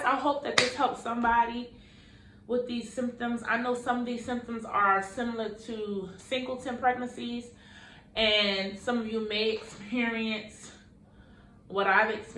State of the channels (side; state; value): both; identical; correlation 1.00